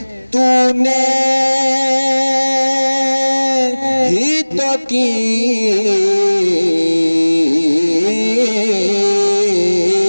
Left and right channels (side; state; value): both; inverted; correlation -1.00